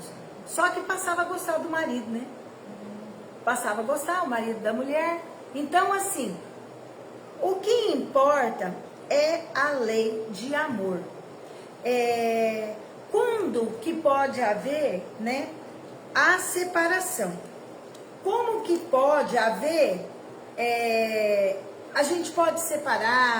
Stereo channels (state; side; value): identical; both; correlation 1.00